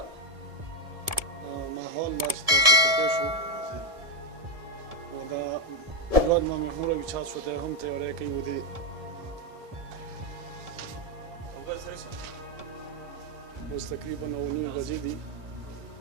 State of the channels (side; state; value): left; late; 1.7 ms